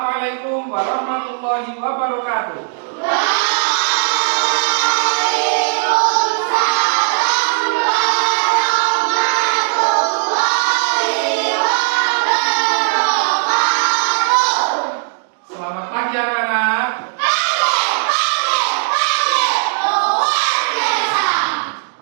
warahmatullahi wabarakatuh. Selamat pagi anak-anak.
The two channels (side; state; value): left; silent; digital silence